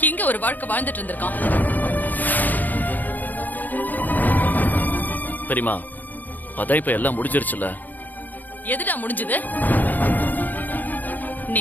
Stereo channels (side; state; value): right; late; 0.084 ms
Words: இங்க ஒரு வாழ்க்கை வாழ்ந்துட்டு இருந்திருக்கான். பெரியமா, அதான் இப்ப எல்லாம் முடிஞ்சிருச்சுல. எதுடா முடிஞ்சது?